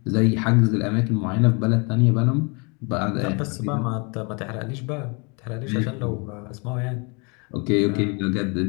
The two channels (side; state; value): right; quieter; 31.8 dB